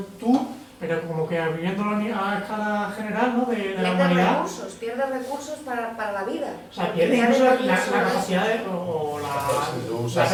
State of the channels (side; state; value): both; identical; correlation 1.00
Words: tú, pero como que viviéndolo a escala general, ¿no? De la humanidad. Pierdes recursos para la vida. O sea, pierdes Ya incluso de la niños son capacidad eso. o Si tú la usas